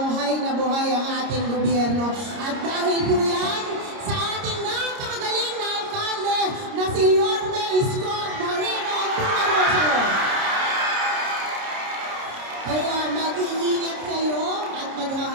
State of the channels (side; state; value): left; late; 30 ms